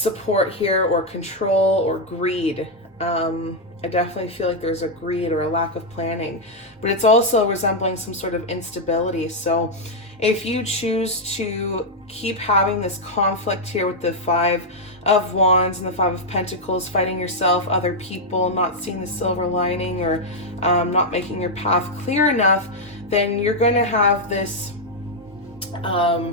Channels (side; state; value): both; normal; correlation -0.02